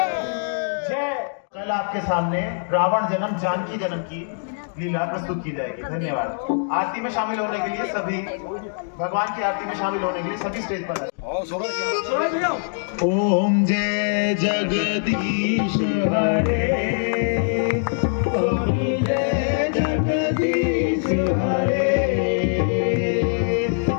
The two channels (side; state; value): right; silent; digital silence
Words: कल आपके सामने रावण जन्म जानकी जन्म की लीला प्रस्तुत की जाएगी। धन्यवाद। आरती में शामिल होने के लिए सभी, भगवान की आरती में शामिल होने के लिए सभी स्टेज पर। ओम जय जगदीश हरे, स्वामी जय जगदीश हरे,